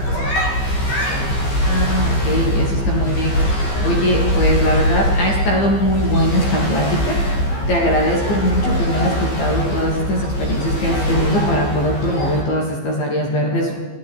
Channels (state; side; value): late; right; 15 ms